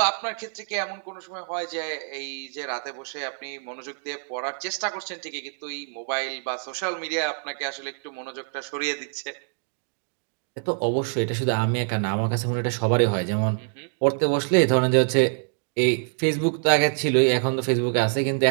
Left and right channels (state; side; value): silent; left; digital silence